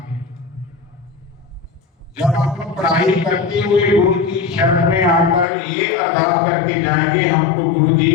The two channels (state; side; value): drops out; right; at 5.5 s